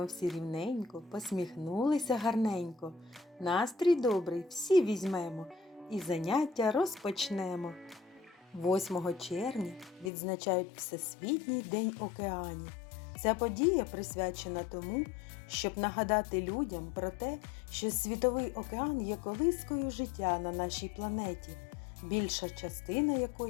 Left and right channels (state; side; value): drops out; right; at 10.1 s